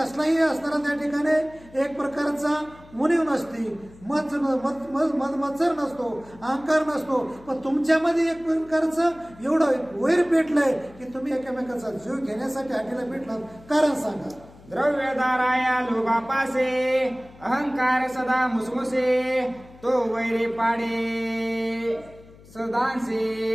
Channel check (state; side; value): noise; left; hum, 23 dB below the sound